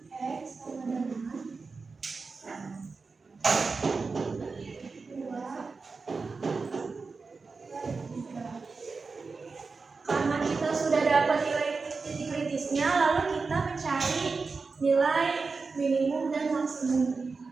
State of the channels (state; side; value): quieter; left; 4.4 dB